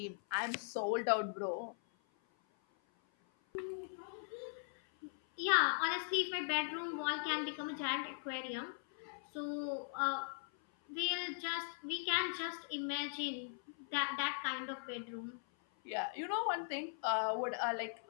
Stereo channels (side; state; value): right; silent; 51 dB below the other